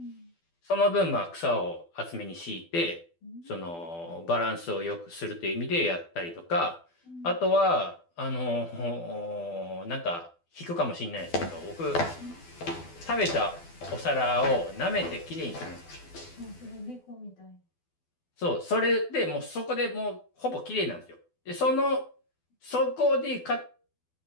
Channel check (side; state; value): right; late; 12 ms